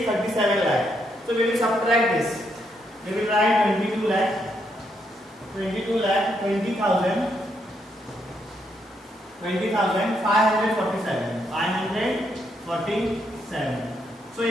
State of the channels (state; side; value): normal; both; correlation 0.77